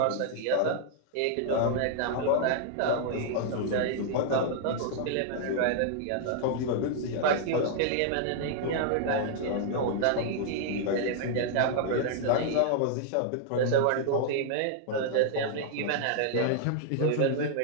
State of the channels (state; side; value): different; both; correlation -0.01